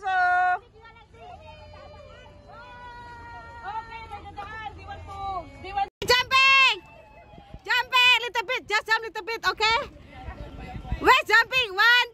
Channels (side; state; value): both; identical; correlation 1.00